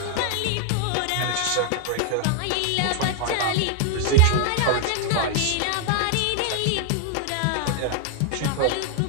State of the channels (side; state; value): both; different; correlation 0.00